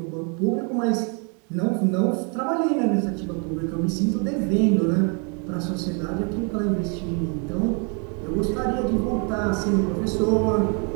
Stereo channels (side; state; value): left; quieter; 36.1 dB